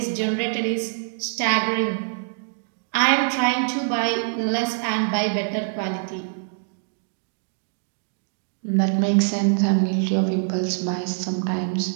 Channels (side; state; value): left; silent; digital silence